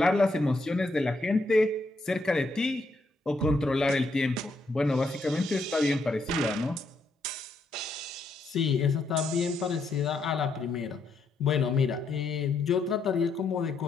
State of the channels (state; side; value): quieter; right; 3.1 dB